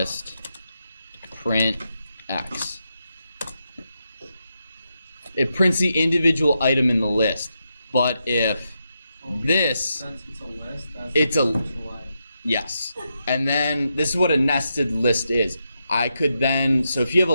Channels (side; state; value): both; inverted; correlation -0.84